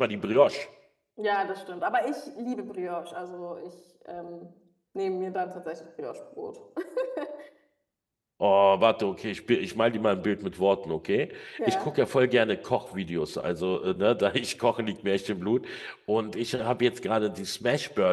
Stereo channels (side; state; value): both; identical; correlation 1.00